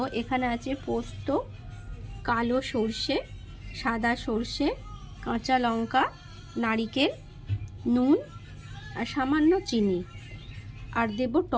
এখানে আছে পোস্ত, কালো সর্ষে, সাদা সর্ষে, কাঁচা লঙ্কা, নারকেল, নুন আর সামান্য চিনি, আর দেব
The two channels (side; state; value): both; identical; correlation 1.00